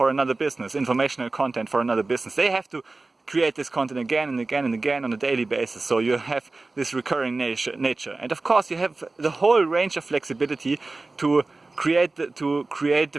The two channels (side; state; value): left; quieter; 3.4 dB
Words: another business, informational content for another business. They have to create this content again and again and again on a daily basis. So you have this recurring nature. And of course you have the whole range of flexibility to create the